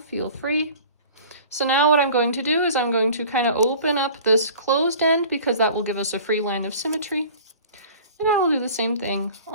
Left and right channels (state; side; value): inverted; both; correlation -0.44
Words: feel free. So now what I'm going to do is I'm going to kind of open up this closed end because that will give us a free line of symmetry. And I will do the same thing